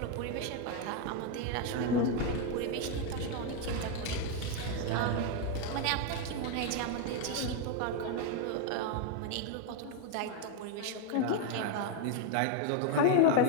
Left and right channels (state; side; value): different; both; correlation 0.01